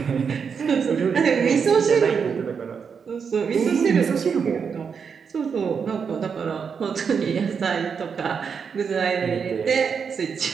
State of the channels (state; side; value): quieter; left; 6.3 dB